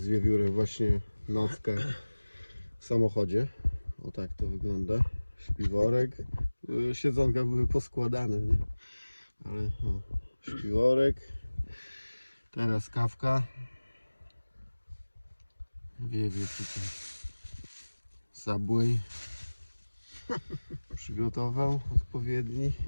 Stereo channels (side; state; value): both; inverted; correlation -1.00